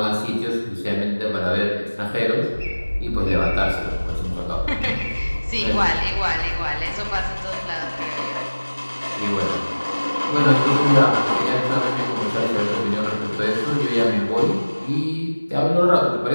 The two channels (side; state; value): both; inverted; correlation -1.00